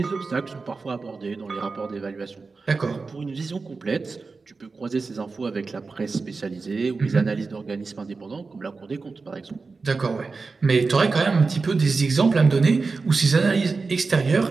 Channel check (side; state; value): left; quieter; 4.2 dB